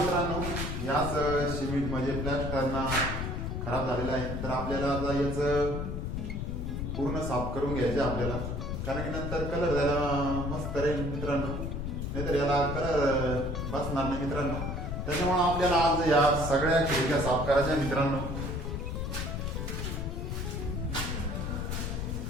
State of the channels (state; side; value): noise; left; rumble, 3 dB below the sound